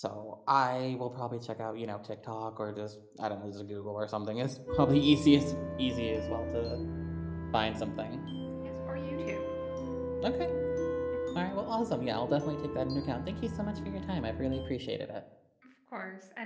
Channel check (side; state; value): both; identical; correlation 1.00